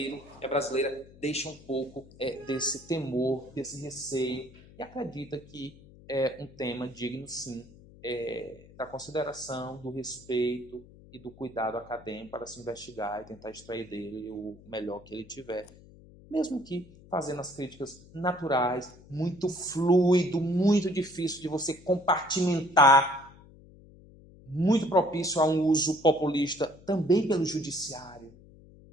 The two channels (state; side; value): noise; left; hum, 22 dB below the sound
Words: e a brasileira deixam um pouco desse temor, desse receio, e acredita que é um tema digno, sim, da consideração, do respeito e do cuidado acadêmico para se investigar e tentar extrair dele o melhor que ele tiver. Mesmo que fazendo as críticas naturais, muito fluido, muito difícil de você compartimentar, muito propício a um uso populista também pelo judiciário,